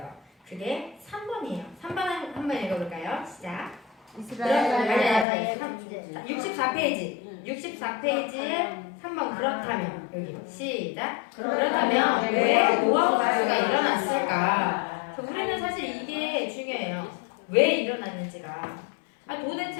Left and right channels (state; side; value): drops out; right; at 5.2 s